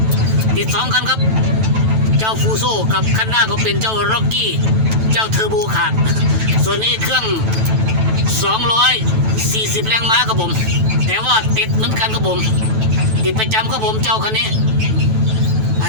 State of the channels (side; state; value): left; late; 9.1 ms